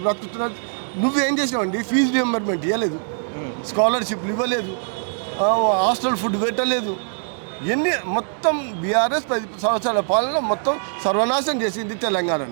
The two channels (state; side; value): silent; left; digital silence